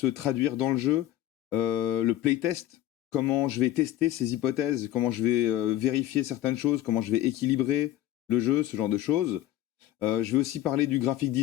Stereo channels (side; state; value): right; quieter; 13.4 dB